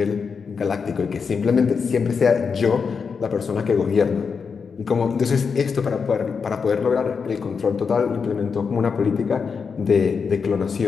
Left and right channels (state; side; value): quieter; right; 5.7 dB